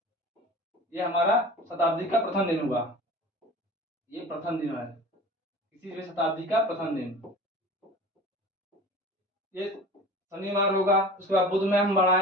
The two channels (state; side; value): normal; both; correlation 0.38